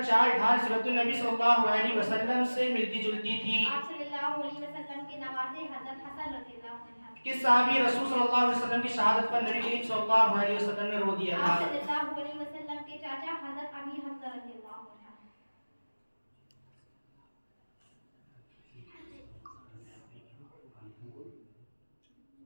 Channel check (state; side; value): inverted; both; correlation -1.00